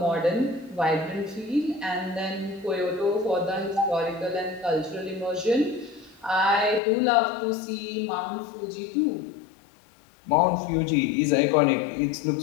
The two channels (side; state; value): right; drops out; at 6.8 s